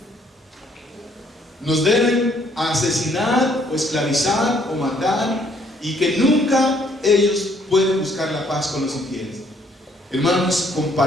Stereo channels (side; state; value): both; normal; correlation 0.66